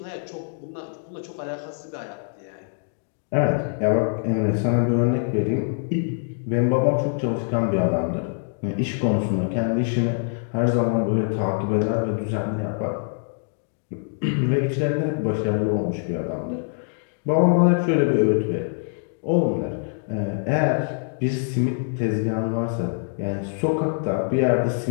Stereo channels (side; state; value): right; silent; digital silence